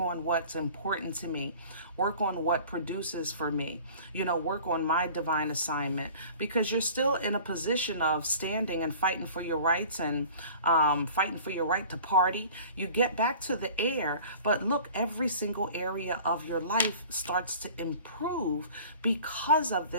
on what's important to me, work on what produces for me, you know, work on my divine assignment, because you're still in a position of standing and fighting for your rights and fighting for your right to party. You get back to the air, but look, every single area of your life starts to improve because of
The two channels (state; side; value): inverted; both; correlation -0.44